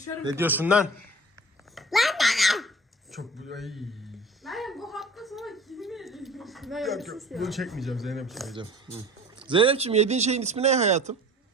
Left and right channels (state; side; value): normal; both; correlation 0.42